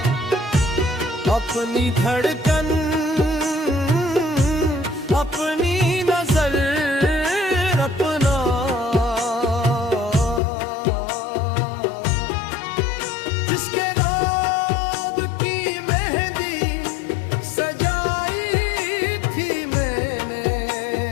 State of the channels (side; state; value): right; drops out; at 10.4 s